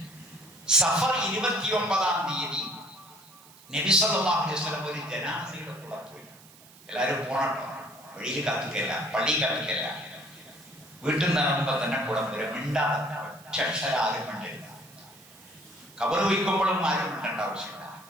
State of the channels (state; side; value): noise; right; hiss, 23 dB below the sound